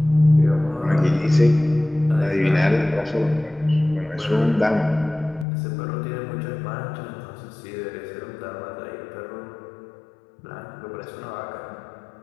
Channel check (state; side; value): drops out; right; at 5.5 s